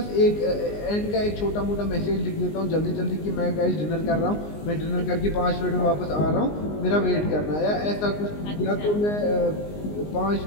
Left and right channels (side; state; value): right; late; 19 ms